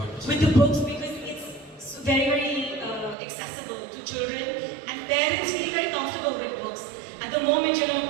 With the books, because it's very, very accessible to children, and parents feel very comfortable with books. At the moment,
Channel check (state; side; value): drops out; left; at 3.2 s